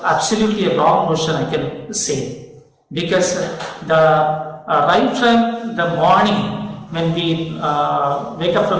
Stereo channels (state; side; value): identical; both; correlation 1.00